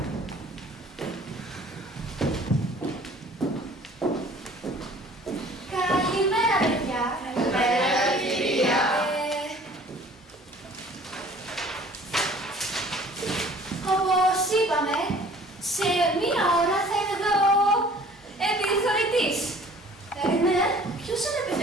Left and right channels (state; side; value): normal; both; correlation 0.51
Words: Καλημέρα, παιδιά. Καλημέρα, κυρία. Όπως είπαμε, σε μία ώρα θα είναι εδώ επιθεωρητής. Ναι, ποιος είναι